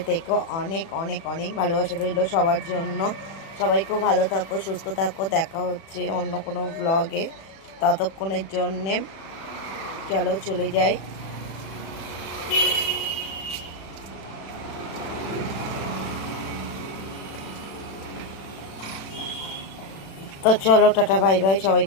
থেকো। অনেক অনেক অনেক ভালোবাসা রইলো সবার জন্য। সবাই খুব ভালো থাকো, সুস্থ থাকো। দেখা হচ্ছে অন্য কোনো ব্লগে, ততক্ষণের জন্যে চলো চলে যাই। তো চলো টাটা বাই বাই, সবাই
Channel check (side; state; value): right; late; 36 ms